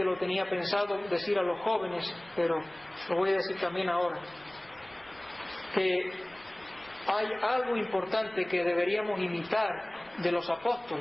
lo tenía pensado decir a los jóvenes, pero lo voy a decir también ahora, que hay algo importante que deberíamos imitar de los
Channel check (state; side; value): noise; left; rumble, 28 dB below the sound